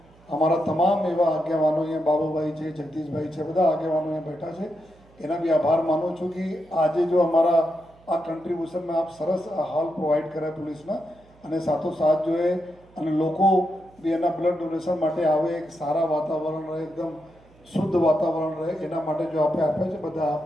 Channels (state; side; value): noise; right; hum, 28 dB below the sound